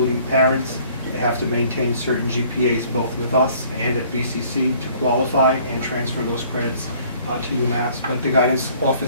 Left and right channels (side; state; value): both; inverted; correlation -0.57